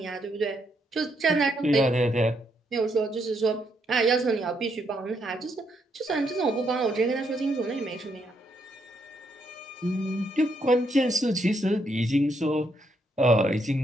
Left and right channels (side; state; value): both; normal; correlation 0.76